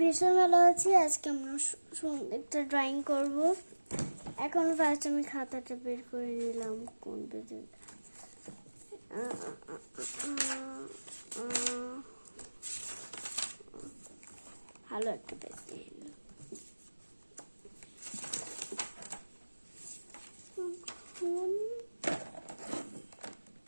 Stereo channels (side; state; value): both; inverted; correlation -1.00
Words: ভীষণ ভালো আছি। আজকে আমরা একটা ড্রয়িং করব। এখন ফার্স্ট আমি খাতাটা বের করে নিলাম। কোন পেজে? ভালো একটা পেজ নিয়ে নিলাম।